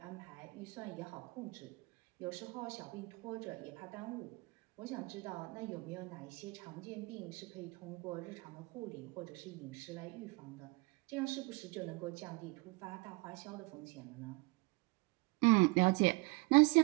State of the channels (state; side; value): quieter; left; 25.8 dB